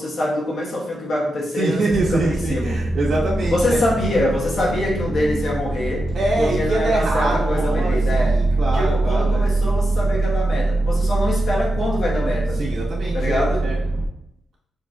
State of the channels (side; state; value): both; normal; correlation 0.88